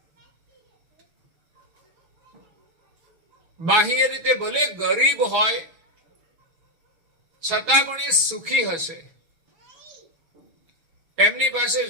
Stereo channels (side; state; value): left; late; 6.1 ms